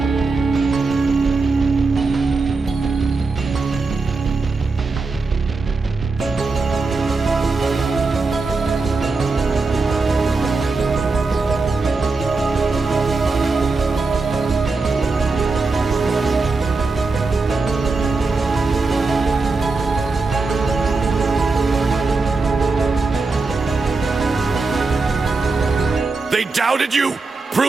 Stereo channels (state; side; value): quieter; left; 3.9 dB